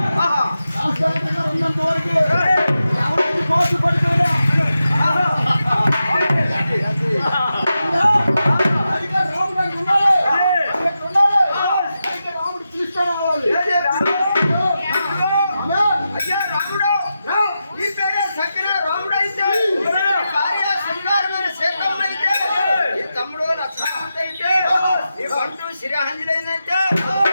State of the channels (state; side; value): inverted; both; correlation -0.89